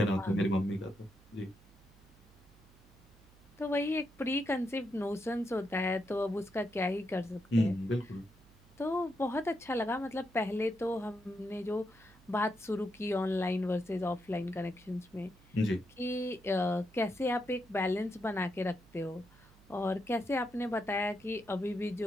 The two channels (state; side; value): noise; right; hum, 26 dB below the sound